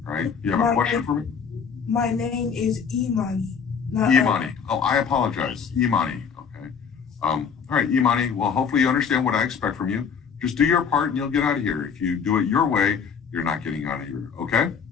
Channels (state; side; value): quieter; right; 6.6 dB